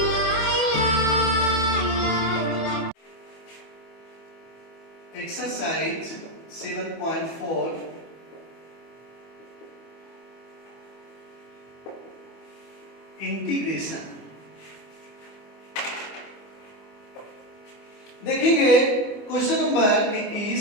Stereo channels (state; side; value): late; right; 25 ms